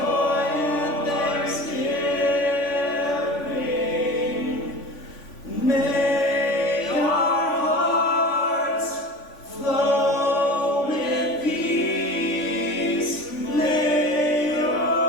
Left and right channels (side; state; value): right; late; 3.5 ms